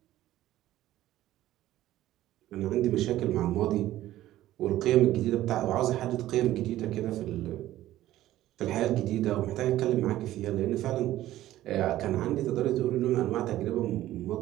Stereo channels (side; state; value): left; quieter; 14.4 dB